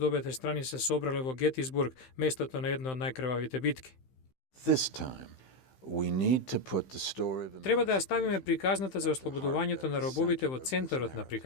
обете страни се собрале во Гетисбург, местото на една од најкрвавите битки. Треба да ја ставиме приказната за ослободувањето на робовите во центарот на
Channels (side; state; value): right; late; 15 ms